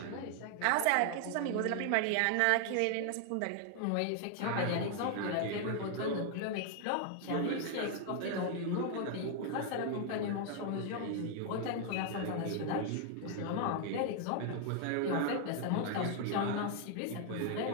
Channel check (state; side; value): different; both; correlation 0.00